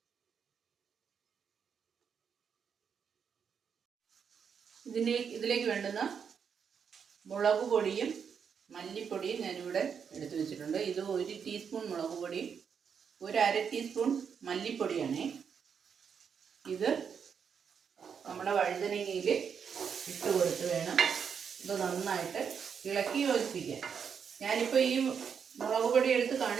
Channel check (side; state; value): left; quieter; 6.9 dB